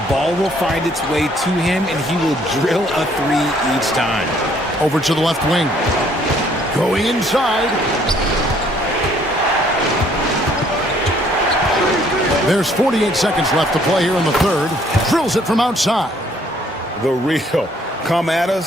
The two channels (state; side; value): normal; both; correlation 0.63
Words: ball will find its way to him, and he will drill a 3 each time. Over to the left wing. Going inside. There's 48 seconds left to play here in the 3rd. Drills it from outside. The real. Come at